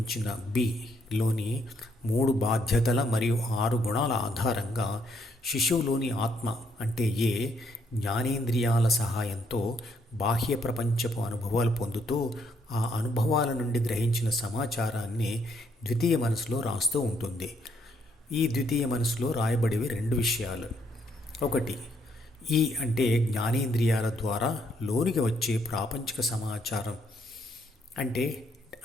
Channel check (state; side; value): normal; both; correlation 0.72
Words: బిలోని 3 బాధ్యతల మరియు 6 గుణాల ఆధారంగా శిశువులోని ఆత్మ అంటే ఏ జ్ఞానేంద్రియాల సహాయంతో బాహ్య ప్రపంచపు అనుభవాలు పొందుతూ ఆ అనుభవాల నుండి గ్రహించిన సమాచారాన్ని ద్వితీయ మనసులో రాస్తూ ఉంటుంది. ఈ ద్వితీయ మనసులో రాయబడేవి 2 విషయాలు. ఒకటి, ఈ అంటే జ్ఞానేంద్రియాల ద్వారా లోనికి వచ్చే ప్రాపంచిక సమాచారం అంటే